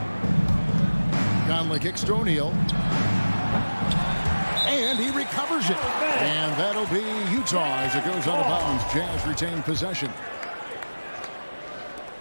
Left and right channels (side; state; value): both; inverted; correlation -1.00